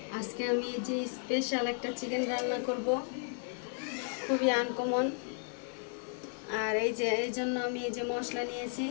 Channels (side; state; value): right; silent; 55 dB below the other